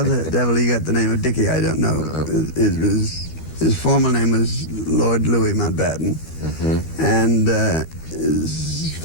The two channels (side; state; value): right; late; 13 ms